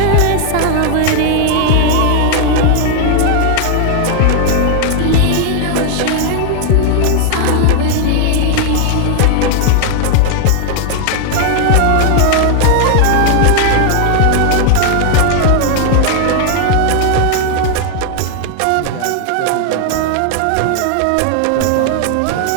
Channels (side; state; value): both; different; correlation 0.00